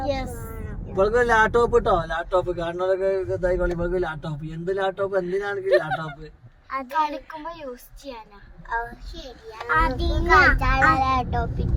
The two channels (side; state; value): both; identical; correlation 1.00